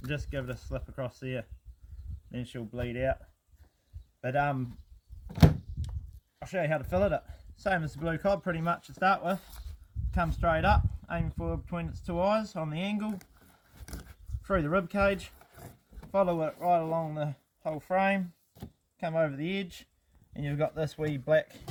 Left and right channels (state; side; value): identical; both; correlation 1.00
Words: just give it a slip across there. Then she'll bleed out. But I'll show you how to fillet it. Same as the blue cod pretty much to start with. Come straight up, aim for between its two eyes on the angle, through the rib cage, follow it right along the whole frame, come over the edge, and you've got this wee black